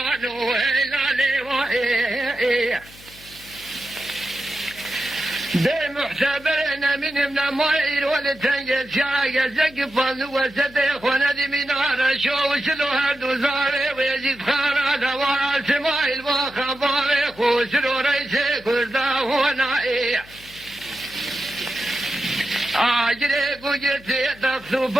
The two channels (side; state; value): left; noise; hum, 22 dB below the sound